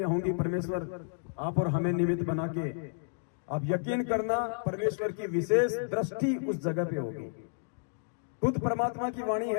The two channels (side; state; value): right; silent; digital silence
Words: होंगी, परमेश्वर आप और हमें निमित्त बना के, आप यकीन करना परमेश्वर की विशेष दृष्टि उस जगह पे होगी। खुद परमात्मा की वाणी